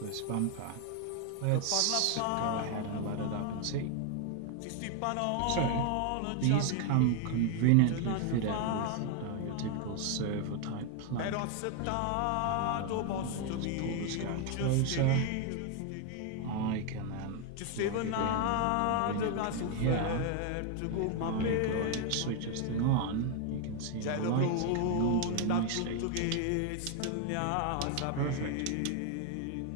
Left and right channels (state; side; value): different; both; correlation 0.01